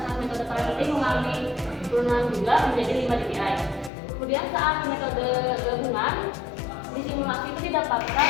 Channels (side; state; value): right; drops out; at 3.9 s